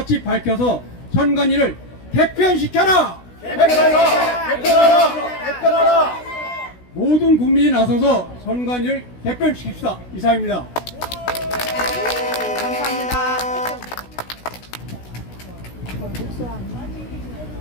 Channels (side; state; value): right; late; 16 ms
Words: 밝혀서 선관위를 개편시켜라! 개편하라! 개편하라! 개편하라! 모든 국민이 나서서 선관위를 개편시킵시다. 이상입니다. 감사합니다.